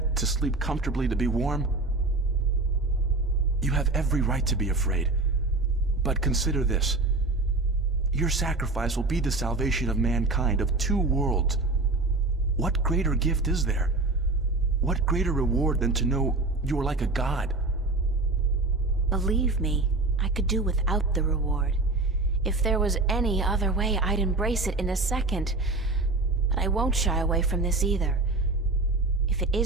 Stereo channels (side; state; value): left; quieter; 3.2 dB